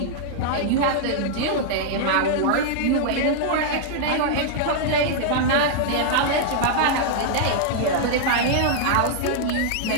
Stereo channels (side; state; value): both; different; correlation -0.01